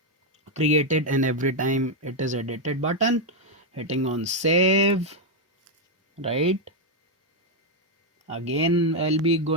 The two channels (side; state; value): both; normal; correlation 0.02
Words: created and every time it is edited button, hitting on save, right? Again I'll be